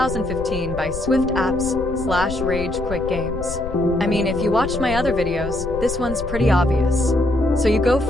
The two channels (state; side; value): noise; left; rumble, 9 dB below the sound